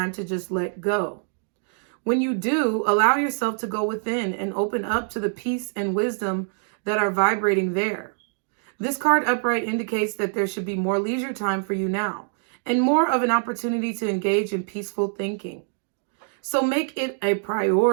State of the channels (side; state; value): left; silent; 62 dB below the other